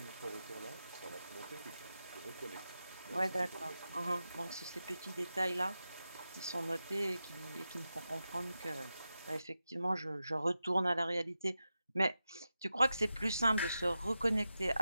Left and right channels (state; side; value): inverted; both; correlation -0.91